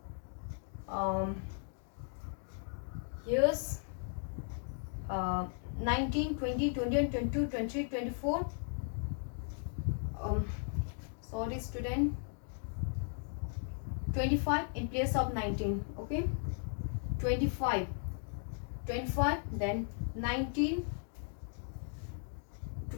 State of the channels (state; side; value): silent; right; 53 dB below the other